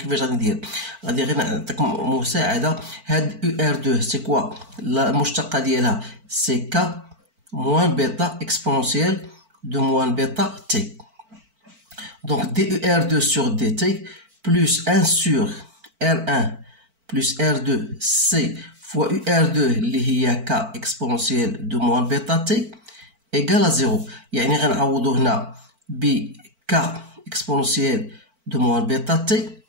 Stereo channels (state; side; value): late; left; 4.5 ms